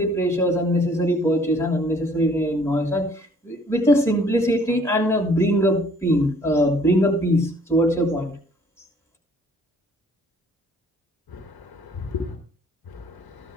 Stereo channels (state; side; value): normal; both; correlation 0.59